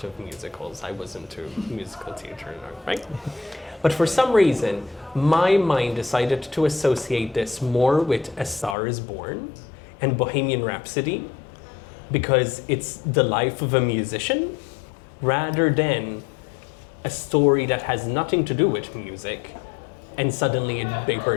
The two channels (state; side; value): drops out; right; at 8.8 s